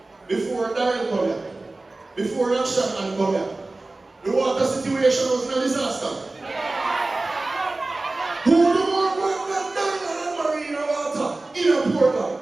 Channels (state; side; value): quieter; left; 3.1 dB